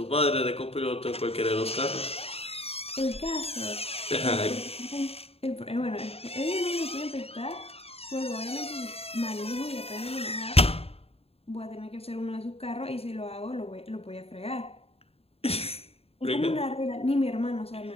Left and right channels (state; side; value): late; right; 0.29 ms